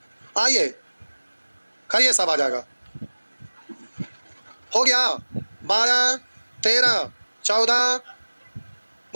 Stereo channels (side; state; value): both; inverted; correlation -1.00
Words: आइए करिए सब आ जाएगा हो गया 12 13 14